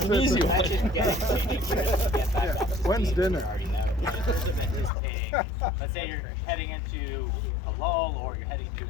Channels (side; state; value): right; drops out; at 4.9 s